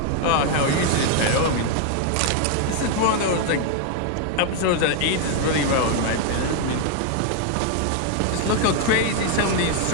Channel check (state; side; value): different; both; correlation 0.00